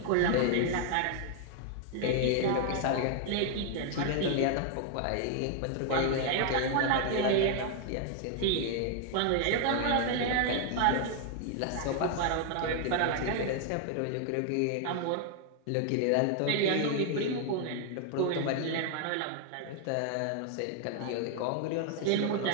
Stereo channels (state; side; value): different; both; correlation 0.00